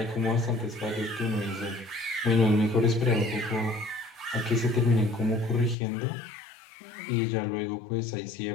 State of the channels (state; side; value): drops out; right; at 5.8 s